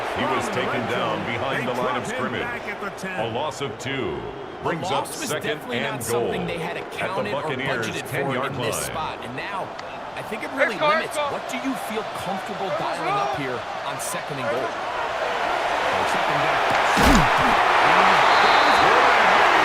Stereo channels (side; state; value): both; identical; correlation 1.00